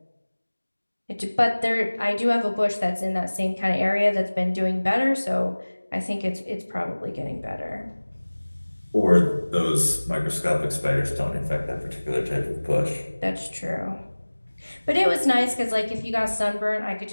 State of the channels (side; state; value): both; inverted; correlation -1.00